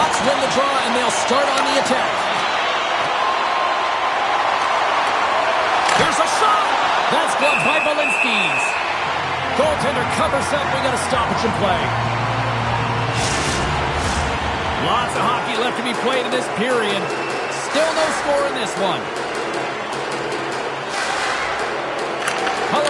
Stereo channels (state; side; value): identical; both; correlation 1.00